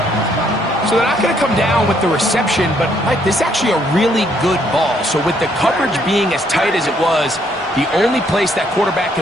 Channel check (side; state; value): both; normal; correlation 0.69